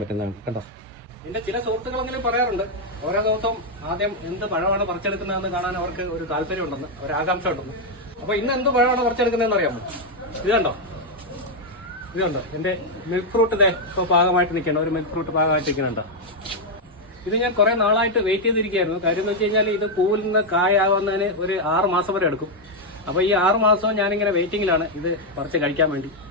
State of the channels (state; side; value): normal; both; correlation 0.01